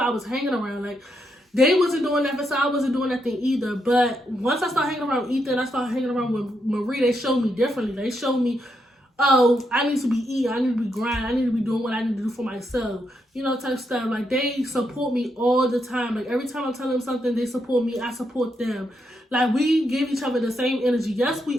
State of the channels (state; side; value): normal; both; correlation 0.80